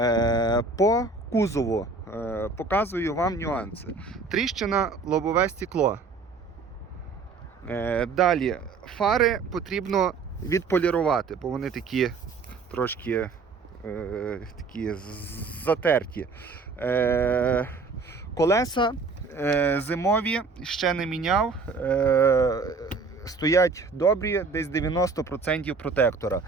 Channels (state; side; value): quieter; left; 4.3 dB